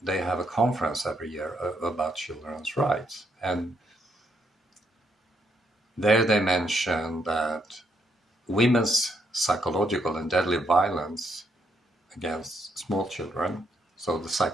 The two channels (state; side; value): normal; both; correlation 0.75